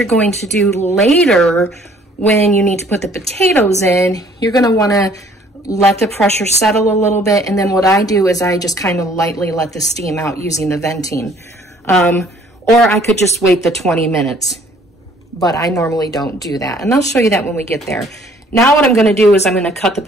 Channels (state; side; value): normal; both; correlation 0.58